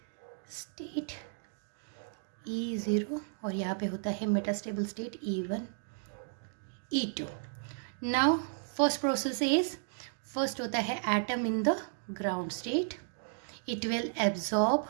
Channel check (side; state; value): left; silent; digital silence